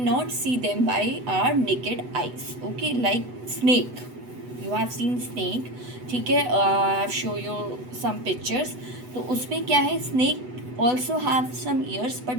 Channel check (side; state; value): left; late; 8.0 ms